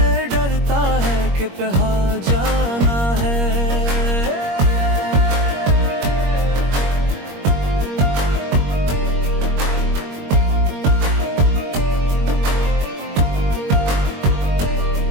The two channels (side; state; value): left; late; 21 ms